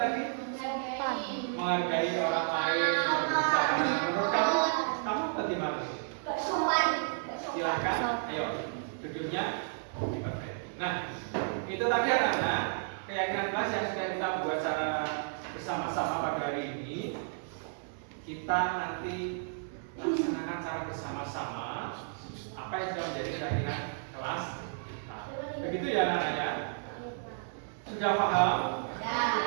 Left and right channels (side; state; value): left; silent; 56 dB below the other